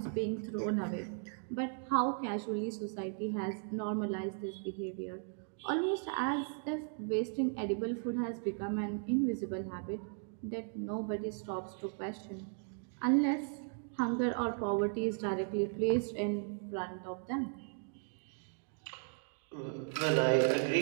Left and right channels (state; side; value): silent; left; 53 dB below the other